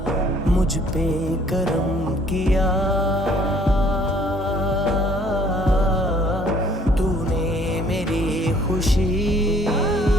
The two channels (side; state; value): both; normal; correlation 0.59